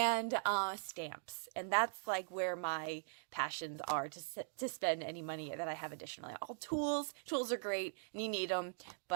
stamps. And that's like where my passions are, to spend any money that I have additionally. All tools are great and you need them,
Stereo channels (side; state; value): left; silent; digital silence